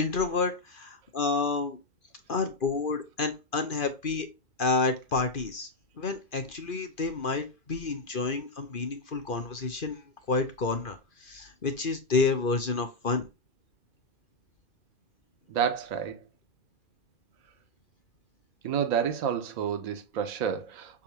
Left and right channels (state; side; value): late; right; 2.5 ms